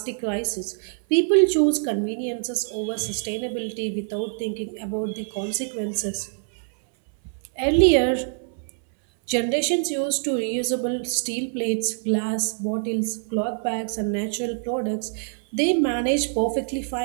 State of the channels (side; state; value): left; silent; 62 dB below the other